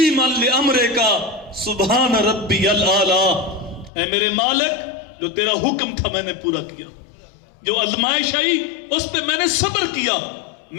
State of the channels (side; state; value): right; drops out; at 3.9 s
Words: لامرکا سبحان ربی الاعلی اے میرے مالک جو تیرا حکم تھا میں نے پورا کیا جو آزمائش آئی اس پہ میں نے صبر کیا